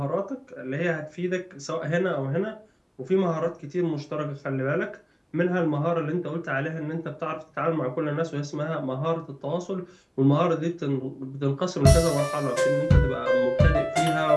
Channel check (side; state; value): both; identical; correlation 1.00